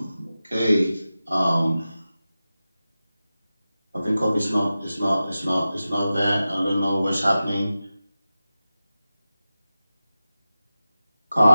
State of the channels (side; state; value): both; inverted; correlation -0.94